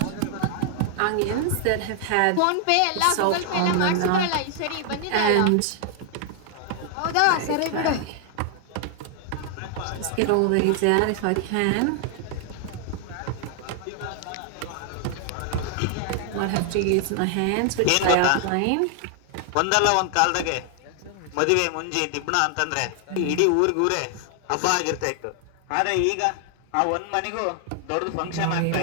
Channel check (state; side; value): different; both; correlation 0.00